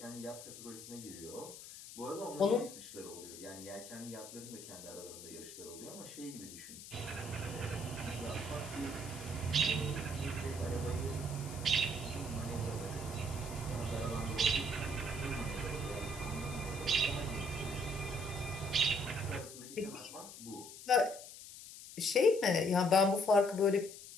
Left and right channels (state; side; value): noise; left; hiss, 14 dB below the sound